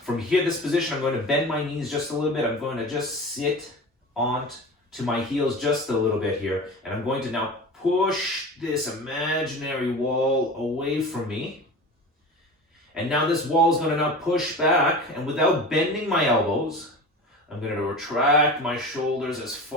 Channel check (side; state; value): both; normal; correlation 0.33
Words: from here, this position, I'm going to bend my knees just a little bit. I'm going to just sit onto my heels just a little bit here, and I'm going to now push this imaginary wall away from me. And now this wall is going to now push back, and without bending my elbows, I'm going to retract my shoulders as